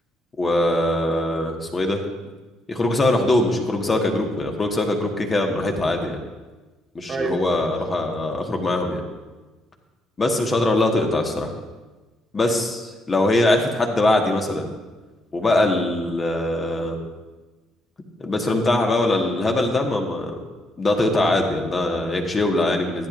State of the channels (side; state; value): both; normal; correlation 0.77